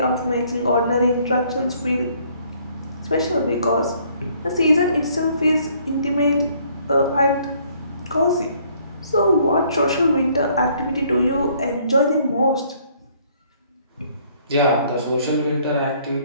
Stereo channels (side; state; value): both; inverted; correlation -0.63